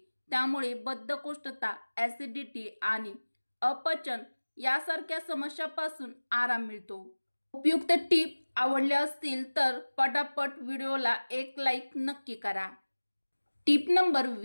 त्यामुळे बद्धकोष्ठता, ॲसिडिटी आणि अपचन यासारख्या समस्यांपासून आराम मिळतो। उपयुक्त टीप आवडल्या असतील तर पटापट व्हिडिओला एक लाईक नक्की करा। टीप नंबर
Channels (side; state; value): both; inverted; correlation -1.00